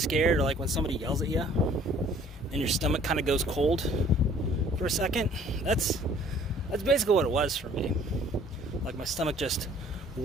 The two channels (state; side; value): normal; both; correlation 0.55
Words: or like when somebody yells at you and your stomach kind of goes cold for a second? That's basically what it was for me. Like my stomach just